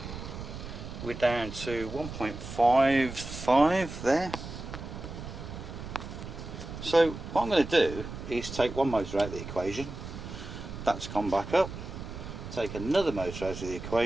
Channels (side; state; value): right; noise; rumble, 10 dB below the sound